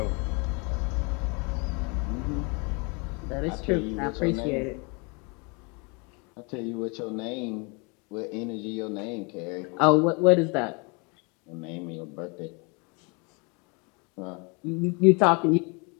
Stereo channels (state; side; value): quieter; right; 31.5 dB